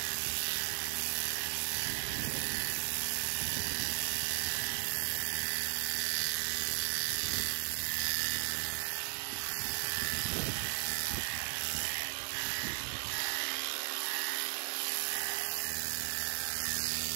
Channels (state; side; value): silent; left; 54 dB below the other